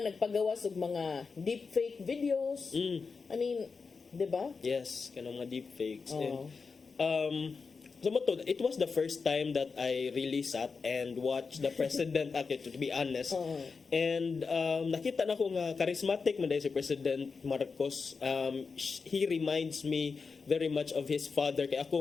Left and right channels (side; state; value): right; quieter; 4.9 dB